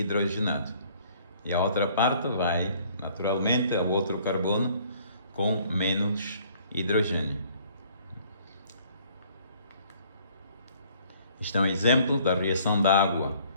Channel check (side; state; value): both; inverted; correlation -0.59